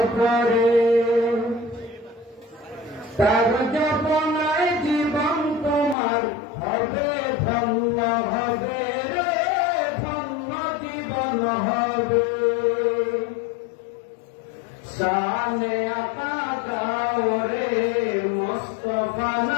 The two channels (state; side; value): drops out; right; at 6.0 s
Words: তার জপনায় জীবন তোমার হবে ধন্য হবে রে ধন্য জীবন হবে শানে আকা গাওরে মুস্তাফা